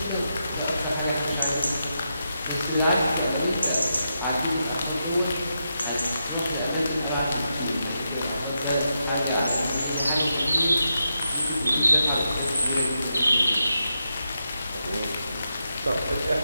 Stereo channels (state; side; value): inverted; both; correlation -0.85